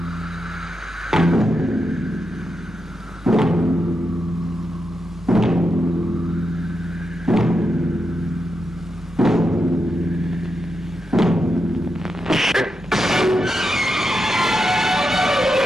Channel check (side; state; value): both; normal; correlation 0.86